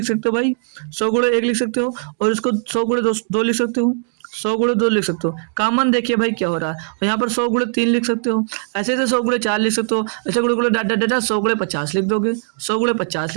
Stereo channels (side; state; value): left; silent; 66 dB below the other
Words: सकते हो भाई, 100 गुणे 1 लिख सकते हो। और इसको 100 गुणे 2 लिख सकते हो, 100 गुणे 2 लिख सकते हो। कॉमन देखिए भाई क्या हो रहा है। और यहाँ पर 100 गुणे 3 लिख सकते हो, ऐसे 100 गुणे 4 लिख सकते हो, ऐसे गुणे गुणे डाट डाट डाट 100 गुणे 50 लिख दोगे, 100 गुणे 50